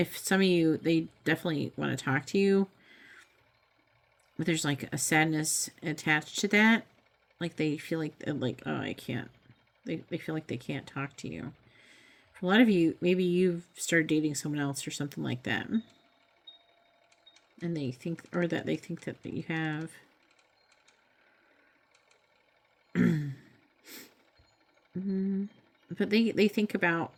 some of you, they definitely want to talk to you, but there's like a sadness attached to that. Like they feel like, oh, I can't. They feel like they can't talk to you. For a lot of you, maybe you've started dating someone else or something like that. And they think, or that they think that you have. But they think about,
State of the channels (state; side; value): identical; both; correlation 1.00